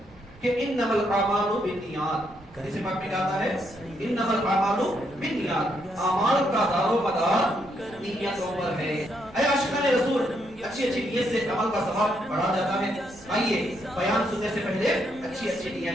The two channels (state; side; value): noise; right; rumble, 24 dB below the sound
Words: کہ انما الاعمال بالنیات. حدیث پاک میں آتا ہے انما الاعمال بالنیات. اعمال کا دار و مدار نیتوں پر ہے. اے عاشقان رسول، اچھی اچھی نیت سے عمل کا ثواب بڑھا جاتا ہے. آئیے بیان سننے سے پہلے اچھی اچھی